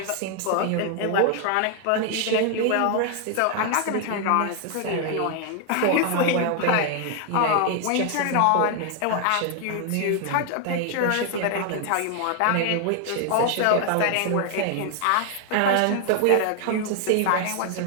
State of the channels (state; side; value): different; both; correlation 0.00